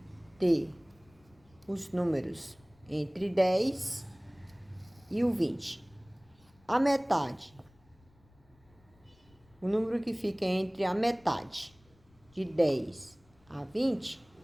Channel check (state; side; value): noise; left; rumble, 30 dB below the sound